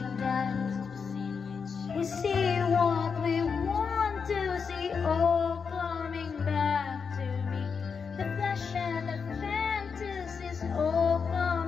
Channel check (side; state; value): right; quieter; 5.8 dB